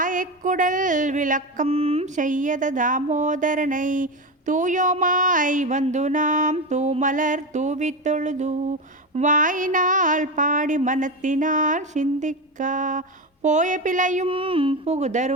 விளக்கம் செய்யத தாமோதரனை தூயோமாய் வந்து நாம் தூமலர் தூவித் தொழுது வாயினால் பாடி மனத்தினால் சிந்திக்கா போய பிழையும்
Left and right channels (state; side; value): normal; both; correlation 0.18